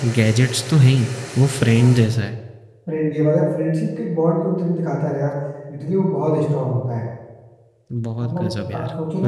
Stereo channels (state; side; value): identical; both; correlation 1.00